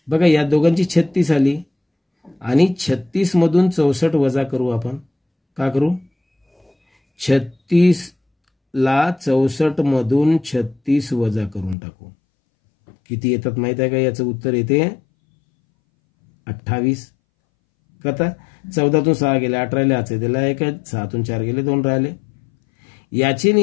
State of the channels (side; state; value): right; drops out; at 11.8 s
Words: बघा, या दोघांची 36 आली आणि 36 मधून 64 वजा करू आपण. का करू? 36 ला 64 मधून 36 वजा करून टाकू. किती येतात माहित आहे का? याचं उत्तर येते 28. कथा 14तून 6 गेले, 8 राहिले, आचे दिला 1, 6तून 4 गेले, 2 राहिले. याची